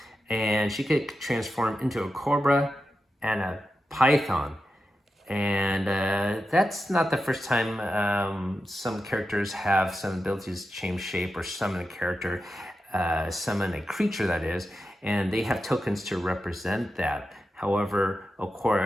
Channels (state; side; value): normal; both; correlation 0.90